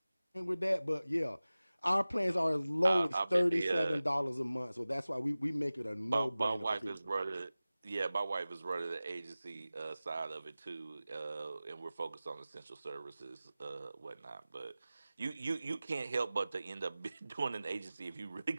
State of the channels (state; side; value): inverted; both; correlation -0.97